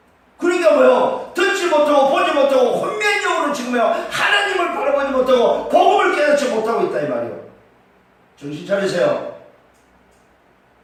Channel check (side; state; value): both; identical; correlation 1.00